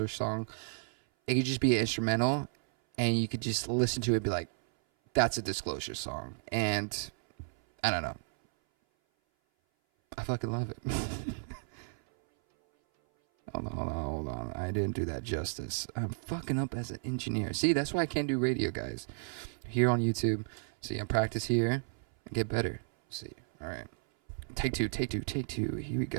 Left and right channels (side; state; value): left; silent; 56 dB below the other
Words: song, it could just be an instrumental, and you could just listen to it and be like, that's a Disclosure song. And I don't know. I fucking love it. Hold on. I didn't do that justice. I'm fucking up as an engineer. See, that's why I can't do radio, guys. Here on YouTube. See, I practice here and get better. See, all right. Take two. Here we